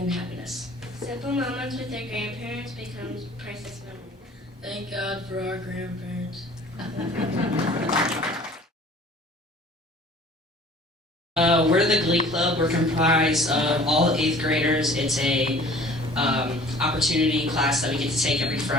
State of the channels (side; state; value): both; normal; correlation 0.49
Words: happiness. Simple moments with their grandparents becomes priceless memories. Thank God for our grandparents. We're the Glee Club. We're comprised of all 8th graders. It's a opportunity class that we get to take every